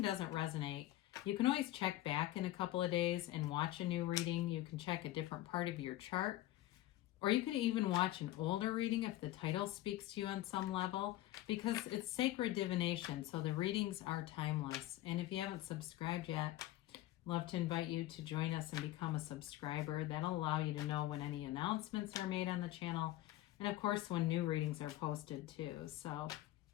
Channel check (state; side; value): quieter; right; 15.4 dB